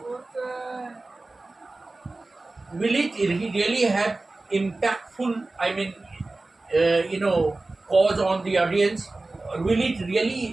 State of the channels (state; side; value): quieter; left; 3.2 dB